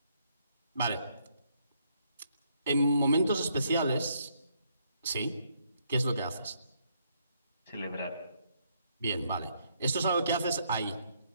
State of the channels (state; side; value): inverted; both; correlation -0.72